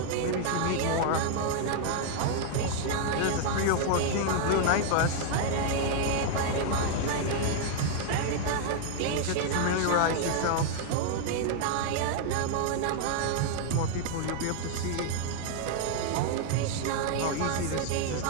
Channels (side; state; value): both; different; correlation 0.00